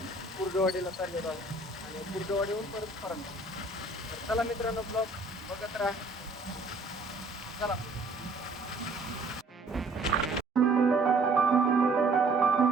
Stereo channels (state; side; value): quieter; left; 3.2 dB